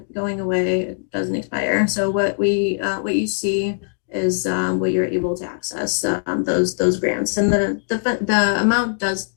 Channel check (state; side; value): silent; right; digital silence